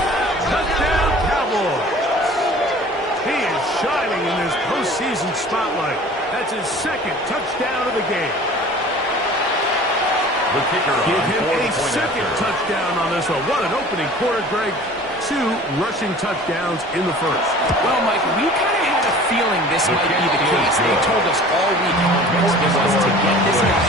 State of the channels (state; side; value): normal; both; correlation 0.45